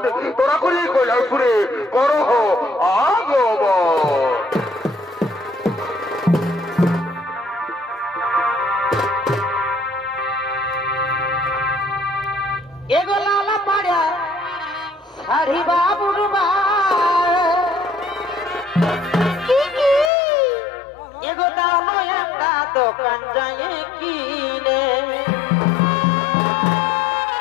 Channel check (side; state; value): right; drops out; at 20.1 s